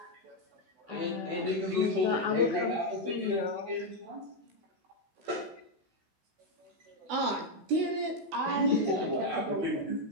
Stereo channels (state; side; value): late; left; 16 ms